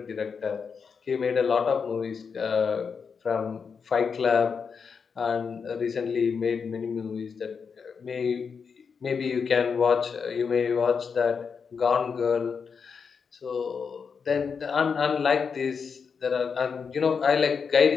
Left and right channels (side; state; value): right; quieter; 5.9 dB